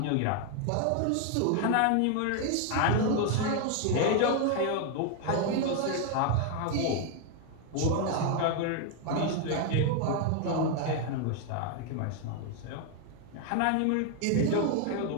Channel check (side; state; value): both; different; correlation 0.01